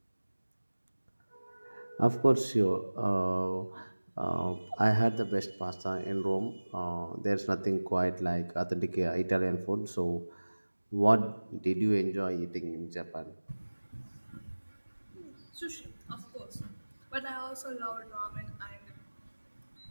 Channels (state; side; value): inverted; both; correlation -1.00